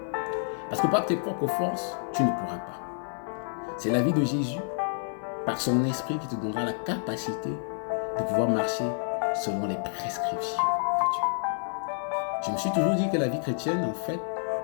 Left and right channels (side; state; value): right; silent; digital silence